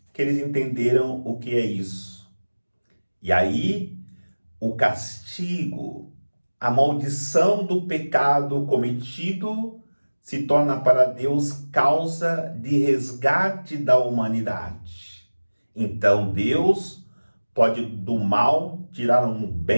que eles entenderam o que é isso. E aí, o castigo, a maldição do pecado cometido se torna para Deus causa de resgate da humanidade. Então Deus pode do mal tirar um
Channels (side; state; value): both; inverted; correlation -1.00